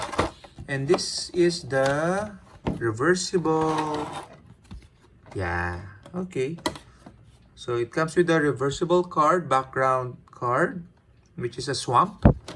And this is the reversible. Yeah, okay. So it comes with a reversible card, background card, which is a swamp.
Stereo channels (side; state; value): both; identical; correlation 1.00